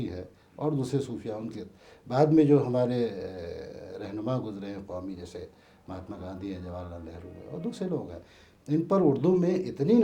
ہے، اور دوسرے صوفیہ ان کے بعد میں جو ہمارے رہنما گزرے ہیں قومی، جیسے مہاتما گاندھی ہیں، جواہر لال نہرو ہیں، اور دوسرے لوگ ہیں۔ ان پر اردو میں اتنی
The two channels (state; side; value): identical; both; correlation 1.00